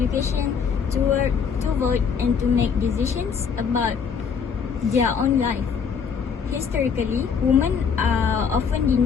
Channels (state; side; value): quieter; right; 6.4 dB